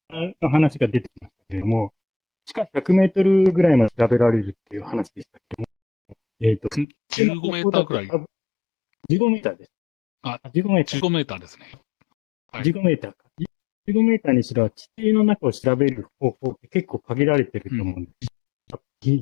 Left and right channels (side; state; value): right; drops out; at 6.9 s